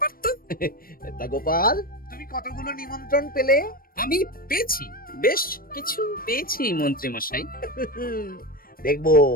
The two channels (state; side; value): late; right; 0.42 ms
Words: তো। তা গোপাল, তুমি কতগুলো নিমন্ত্রণ পেলে? আমি পেয়েছি, বেশ কিছু পেয়েছি মন্ত্রী মশাই। দেখবো,